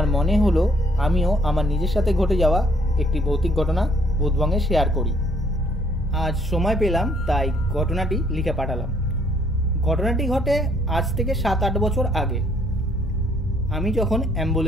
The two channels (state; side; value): normal; both; correlation 0.65